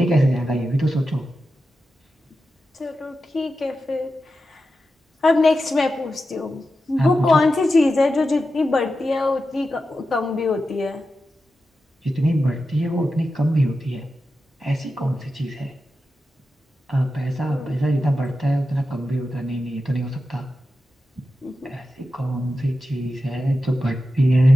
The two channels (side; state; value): both; normal; correlation 0.91